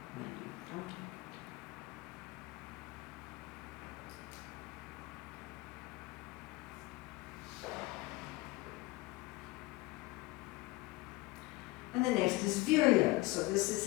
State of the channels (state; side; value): quieter; right; 21.3 dB